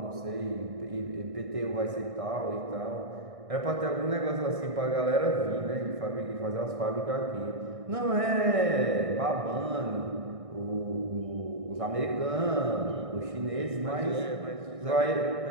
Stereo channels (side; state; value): left; late; 1.6 ms